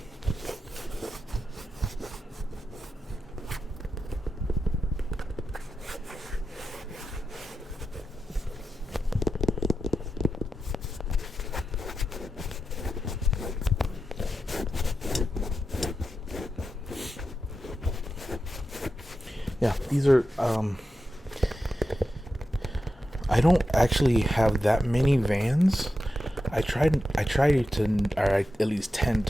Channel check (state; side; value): normal; both; correlation 0.89